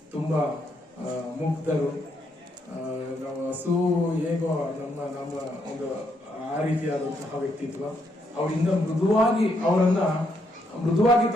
ತುಂಬಾ ಮುಗ್ಧರು. ಹಸು ಹೇಗೋ ನಮ್ಮ ಒಂದು ಆ ರೀತಿಯಾದಂತಹ ವ್ಯಕ್ತಿತ್ವ. ಅವರಿಂದ ಮೃದುವಾಗಿ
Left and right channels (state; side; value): normal; both; correlation 0.76